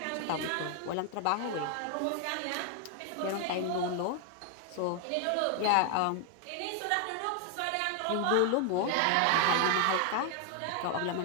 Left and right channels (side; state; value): both; different; correlation 0.00